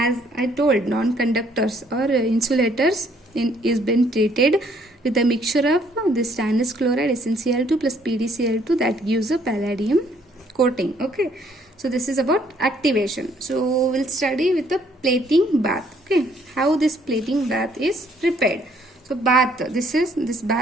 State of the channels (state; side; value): normal; both; correlation 0.65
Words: I told, non-conductors or insulators is been treated with a mixture of this stannous chloride SnCl2 plus PdCl2 that gives a palladium coating. Okay, so this is about activation. So we'll study with the plating bath. Okay, how this plating bath is prepared. So bath, this